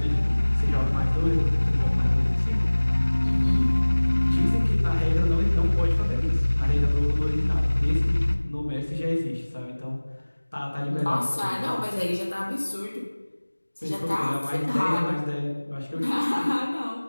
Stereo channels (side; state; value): both; inverted; correlation -1.00